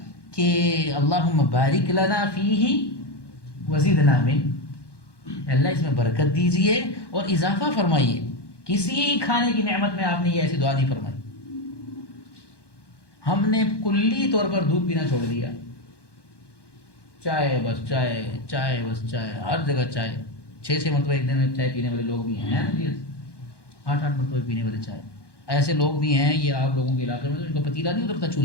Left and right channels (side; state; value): right; late; 1.1 ms